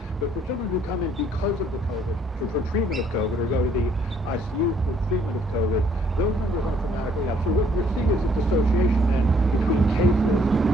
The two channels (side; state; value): both; normal; correlation 0.64